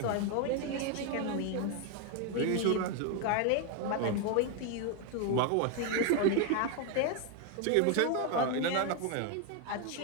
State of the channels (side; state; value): both; different; correlation 0.01